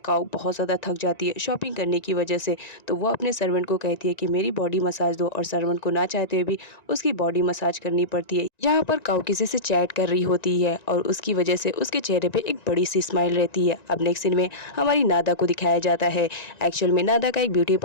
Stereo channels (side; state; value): right; late; 1.9 ms